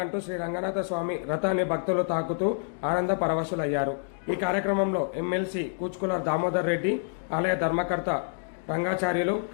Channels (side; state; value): right; silent; digital silence